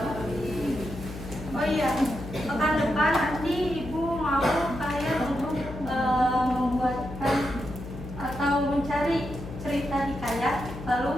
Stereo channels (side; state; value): left; noise; hum, 11 dB below the sound